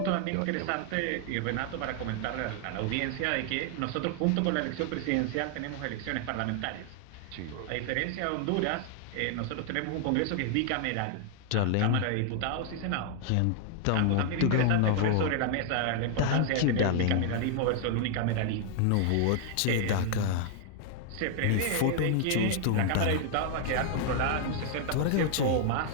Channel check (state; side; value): different; both; correlation 0.00